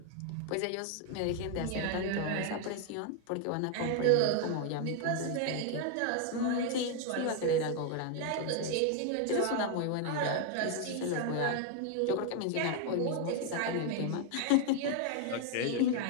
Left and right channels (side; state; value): both; different; correlation 0.00